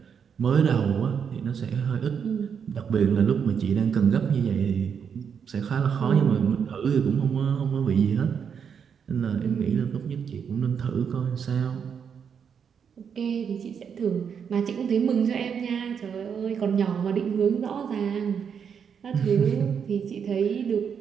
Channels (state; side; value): quieter; left; 7.1 dB